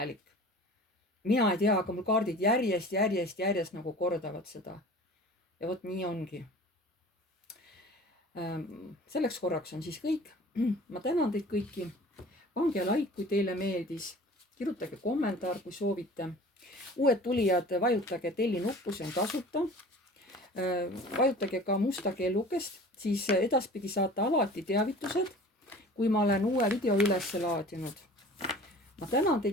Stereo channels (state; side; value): normal; both; correlation 0.43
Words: Mina ei tea, aga mul kaardid järjest nagu kordavad seda. Ja vot nii ongi. Selleks korraks on siis kõik. Ma tänan teid kõiki. Pange like, kui teile meeldis. Kirjutage kommentaar, kui soovite. Uued tulijad, vajutage telli nuppu, see on tasuta. Vajutage ka musta kellukest, siis edaspidi saate alati teavitused, kui ma olen uue video üles laadinud. Ma tänan